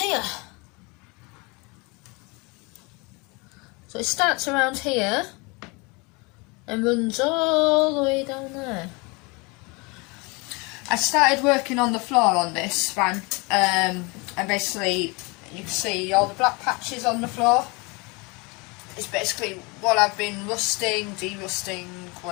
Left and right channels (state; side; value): quieter; right; 27.8 dB